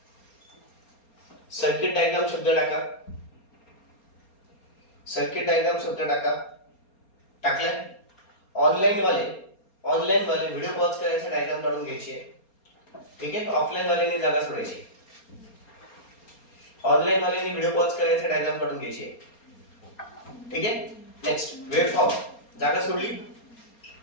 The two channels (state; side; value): late; right; 4.3 ms